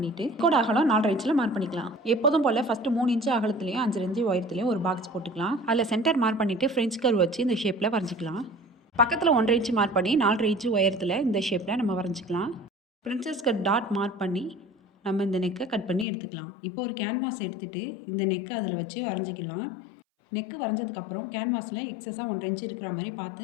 கோட் அகலம் 4.5 இன்ச்சில் மார்க் பண்ணிக்கலாம். எப்போதும் போல் ஃபஸ்ட்டு 3 இன்ச்சு அகலத்துலையும் 5 இன்ச்சு உயரத்துலையும் ஒரு பாக்ஸ் போட்டுக்கலாம். அதில் சென்டர் மார்க் பண்ணிவிட்டு ஃப்ரெஞ்ச் கர்வ் வச்சு இந்த ஷேப்பில் வரைஞ்சிக்கலாம். பக்கத்தில் 1.5 இன்ச்சு மார்க் பண்ணி 4.5 இன்ச்சு உயரத்தில் இந்த ஷேப்பில் நம்ம வரைஞ்சிக்கலாம். பிரின்சஸ் கட் டாட் மார்க் பண்ணி நம்ம இந்த நெக்கை கட் பண்ணி எடுத்துக்கலாம். இப்போ ஒரு கேன்வாஸ் எடுத்துகிட்டு இந்த நெக்கை அதில் வச்சு வரைஞ்சிக்கலாம். நெக்கு வரைஞ்சதுக்கப்புறம் கேன்வாஸில் எக்ஸஸாக 1.5 இன்ச்சு இருக்கிற மாதிரி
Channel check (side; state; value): right; drops out; at 16.1 s